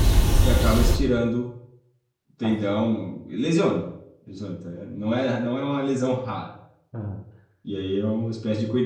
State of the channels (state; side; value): identical; both; correlation 1.00